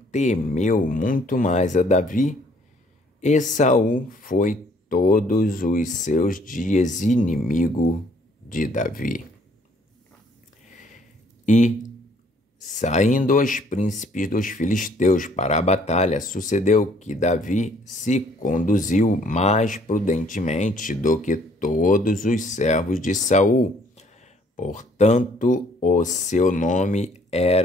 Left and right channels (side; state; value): both; normal; correlation 0.62